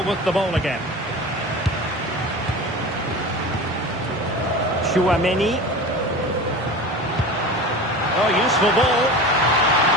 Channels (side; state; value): both; normal; correlation 0.33